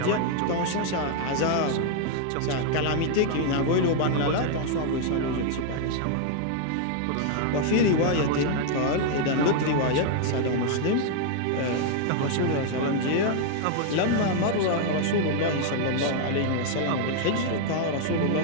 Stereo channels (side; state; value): both; different; correlation 0.00